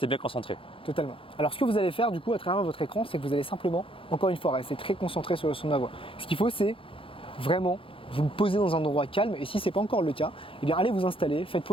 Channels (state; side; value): late; right; 0.26 ms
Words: bien concentrés. totalement. Alors ce que vous allez faire du coup à travers votre écran, c'est que vous allez simplement, encore une fois, rester très concentré sur le son de ma voix. Ce qu'il faut, c'est vraiment vous poser dans un endroit calme et si ce n'est pas encore le cas, eh bien allez vous installer, faites